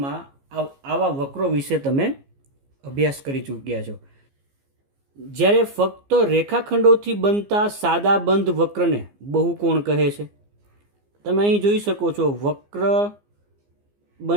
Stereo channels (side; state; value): left; late; 15 ms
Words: આવા વક્રો વિશે તમે અભ્યાસ કરી ચૂક્યા છો। જ્યારે ફક્ત રેખાખંડોથી બનતા સાદા બંધ વક્રને બહુકોણ કહે છે। તમે અહીં જોઈ શકો છો, વક્ર